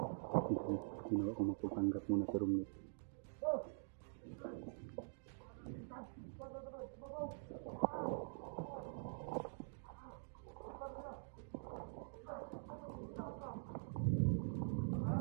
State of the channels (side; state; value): left; silent; digital silence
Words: Ginawa ko magpapanggap muna sa room niya.